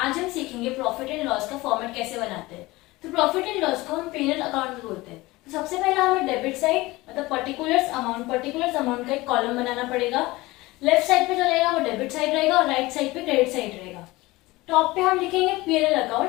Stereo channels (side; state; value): right; quieter; 20.4 dB